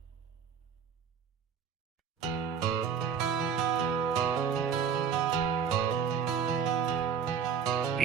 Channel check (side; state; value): left; quieter; 7.2 dB